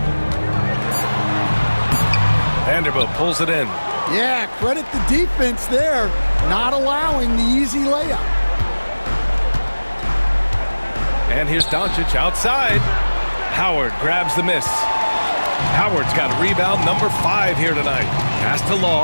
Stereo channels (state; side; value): inverted; both; correlation -1.00